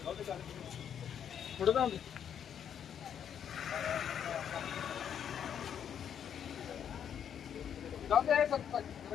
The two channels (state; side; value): quieter; right; 8.7 dB